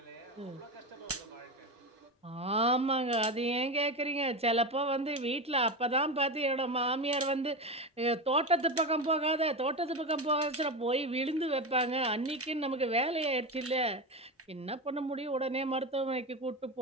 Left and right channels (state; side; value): normal; both; correlation 0.19